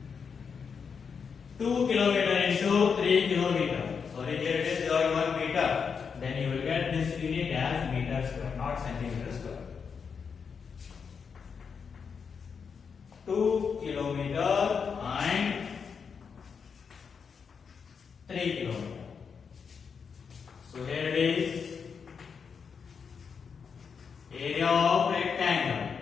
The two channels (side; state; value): right; quieter; 6.1 dB